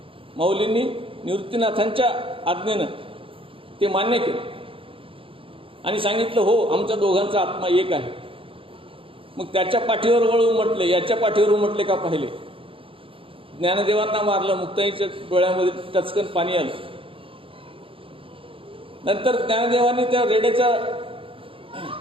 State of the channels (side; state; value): left; late; 0.26 ms